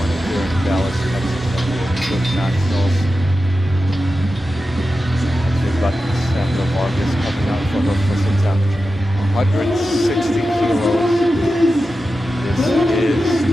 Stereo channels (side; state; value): both; normal; correlation 0.92